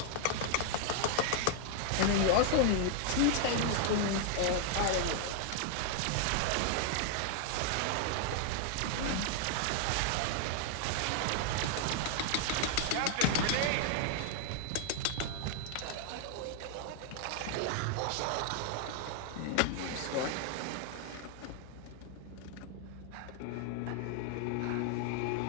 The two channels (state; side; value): different; both; correlation 0.00